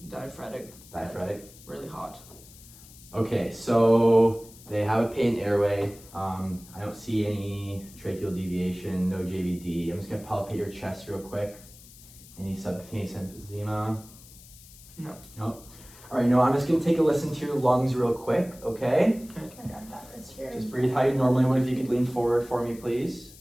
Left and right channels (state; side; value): noise; left; hiss, 21 dB below the sound